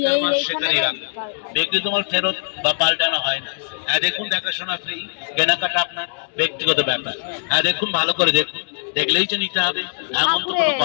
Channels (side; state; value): right; silent; digital silence